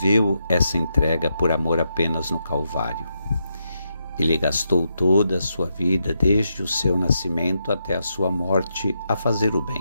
essa entrega por amor apenas no Calvário. Ele gastou toda a sua vida, desde o seu nascimento até a sua morte, a fazer o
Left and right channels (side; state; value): both; inverted; correlation -0.83